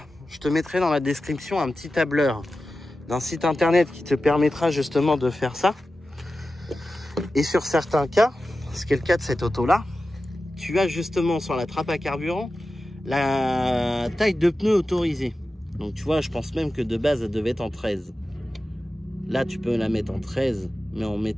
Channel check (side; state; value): both; normal; correlation 0.93